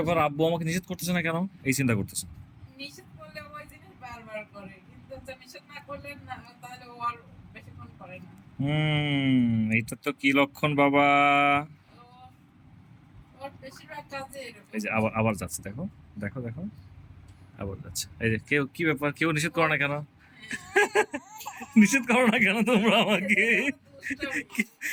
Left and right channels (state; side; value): identical; both; correlation 1.00